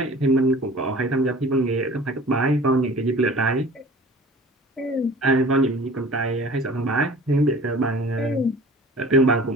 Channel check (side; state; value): both; normal; correlation 0.44